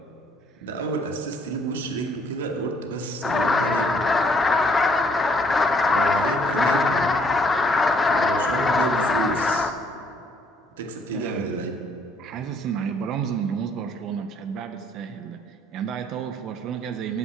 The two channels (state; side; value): normal; both; correlation 0.65